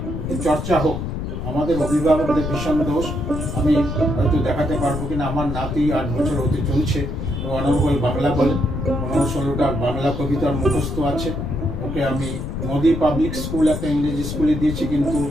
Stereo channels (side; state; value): left; noise; rumble, 4 dB below the sound